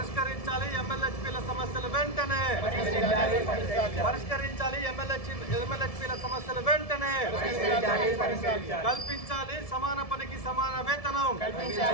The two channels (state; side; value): late; right; 1.7 ms